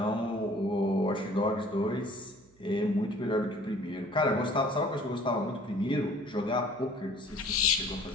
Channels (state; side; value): noise; right; hum, 30 dB below the sound